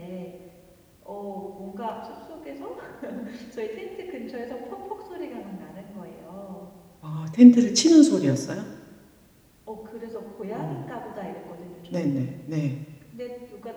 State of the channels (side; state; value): both; identical; correlation 1.00